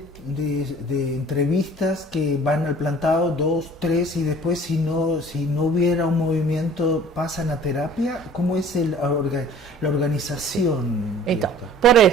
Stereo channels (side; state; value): both; normal; correlation 0.49